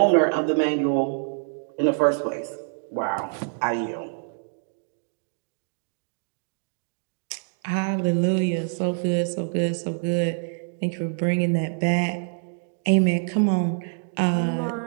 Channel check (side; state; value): left; silent; digital silence